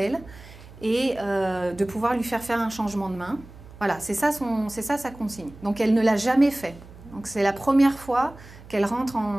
et de pouvoir lui faire un changement de main. Voilà, c'est ça sa consigne. Donc elle ne l'a jamais fait. Donc c'est la première fois qu'elle rentre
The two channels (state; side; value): noise; right; hum, 19 dB below the sound